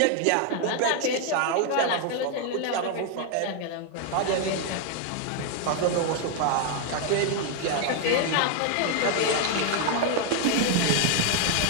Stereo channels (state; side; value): different; both; correlation 0.00